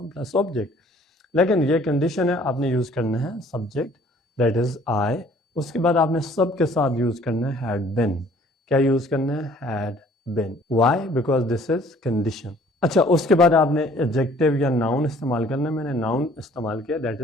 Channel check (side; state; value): both; normal; correlation 0.56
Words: plus object، لیکن یہ کنڈیشن ہے آپ نے یوز کرنا ہے subject that is I، اس کے بعد آپ نے سب کے ساتھ یوز کرنا ہے had been۔ کیا یوز کرنا ہے had been۔ why because this is condition۔ اچھا اس کے بعد آپ نے ایڈجیکٹیو یا ناؤن استعمال کرنا ہے، میں نے ناؤن استعمال کیا that